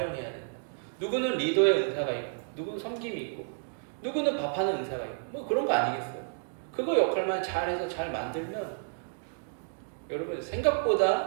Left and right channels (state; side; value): silent; left; digital silence